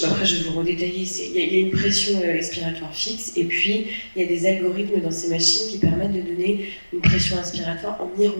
Après, je vais vous redétailler. Il y a une pression expiratoire fixe, et puis il y a des algorithmes dans ces machines qui permettent de donner une pression inspiratoire en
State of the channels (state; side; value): inverted; both; correlation -1.00